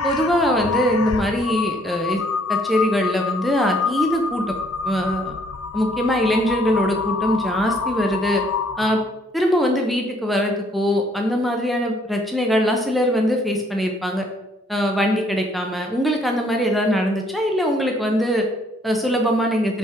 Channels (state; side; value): normal; both; correlation 0.64